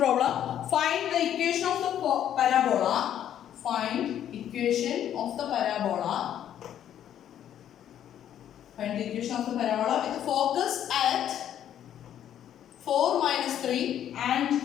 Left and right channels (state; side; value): quieter; right; 10.5 dB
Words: Find the equation of the parabola. Find equation of the parabola. Find the equation of the parabola with focus at 4 minus 3 and